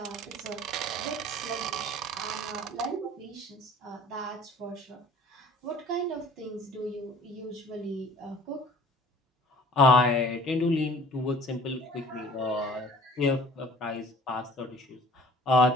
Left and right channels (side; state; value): both; normal; correlation 0.49